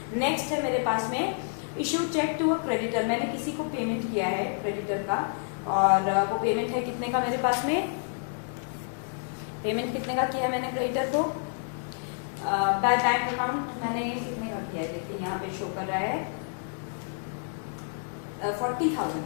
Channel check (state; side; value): silent; right; digital silence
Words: नेक्स्ट है मेरे पास में issue cheque to a creditor, मैंने किसी को पेमेंट किया है क्रेडिटर का, और वो पेमेंट है कितने का, मेरे पास में पेमेंट कितने का किया है मैंने क्रेडिटर को, बाय बैंक अकाउंट मैंने कितने का किया है, देखिए यहाँ पे शो कर रहा है